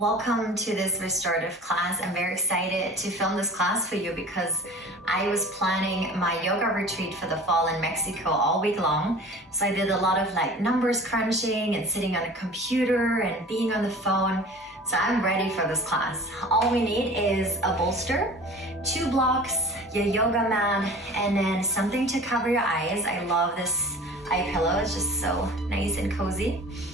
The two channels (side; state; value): both; normal; correlation 0.42